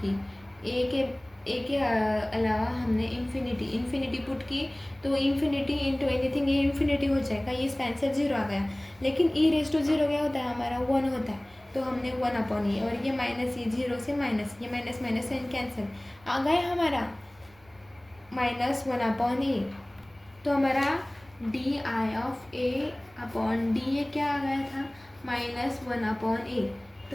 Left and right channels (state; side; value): noise; right; rumble, 28 dB below the sound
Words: की, ए के अलावा हमने इन्फिनिटी पुट की, तो इन्फिनिटी इंटू एनीथिंग ये इन्फिनिटी हो जाएगा, ये इसका आंसर 0 आ गया, लेकिन ई रेस टू 0 क्या होता है हमारा 1 होता है, तो हमने 1 अपॉन ए, और ये माइनस ये 0 से माइनस, ये माइनस साइन कैंसिल आ गया हमारा -1 अपॉन ए, तो हमारा D I of A upon D ए क्या आ गया था -1 अपॉन ए।